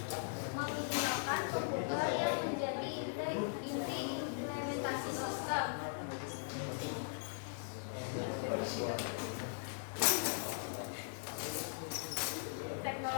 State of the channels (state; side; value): silent; right; digital silence